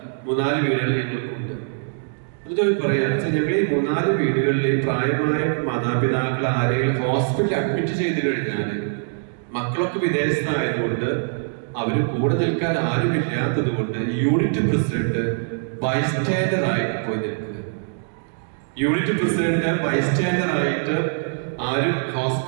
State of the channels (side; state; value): left; silent; digital silence